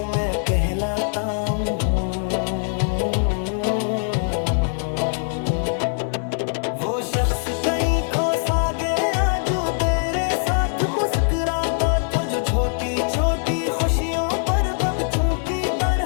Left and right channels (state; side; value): silent; right; digital silence